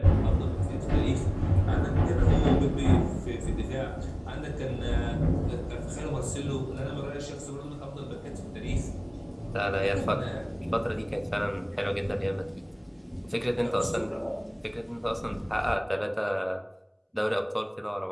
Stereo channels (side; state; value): both; identical; correlation 1.00